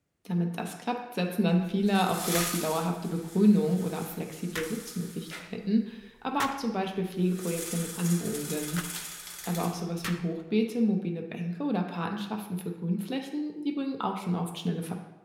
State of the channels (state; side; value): identical; both; correlation 1.00